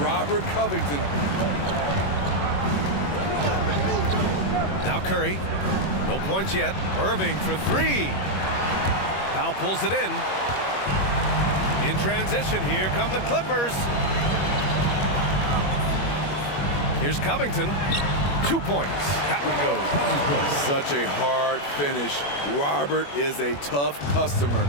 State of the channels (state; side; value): late; right; 21 ms